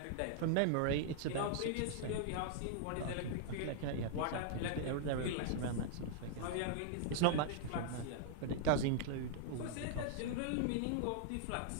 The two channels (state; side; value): different; both; correlation -0.01